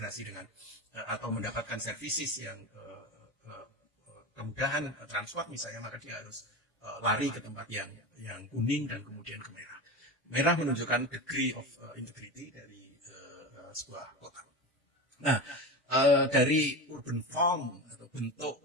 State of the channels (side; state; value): both; normal; correlation 0.25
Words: dengan atau mendapatkan services yang kemudahan transport misalnya, maka dia harus lari ke tempat yang kuning dan kemudian ke merah. Merah menunjukkan degree of integrity dari sebuah kota. Nah, dari urban form atau bentuk